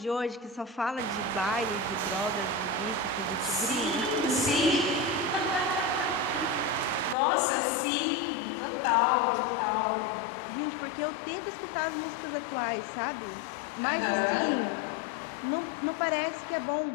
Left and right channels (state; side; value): drops out; right; at 7.2 s